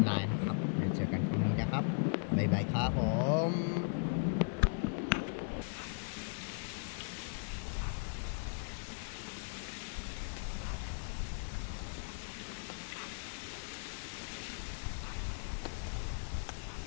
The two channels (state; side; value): silent; right; digital silence